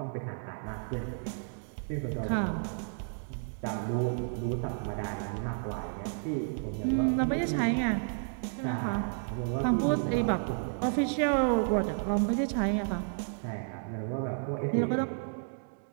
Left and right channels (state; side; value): silent; left; digital silence